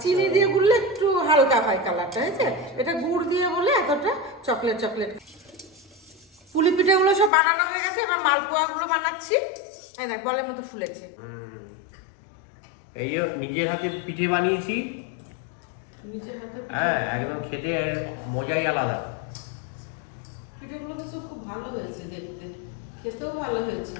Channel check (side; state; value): right; drops out; at 7.3 s